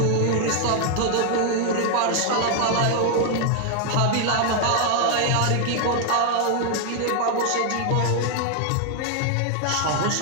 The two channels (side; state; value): both; different; correlation 0.00